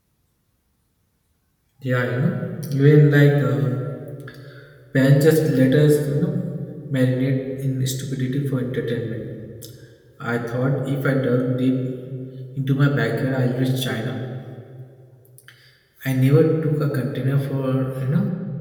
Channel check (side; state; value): both; identical; correlation 1.00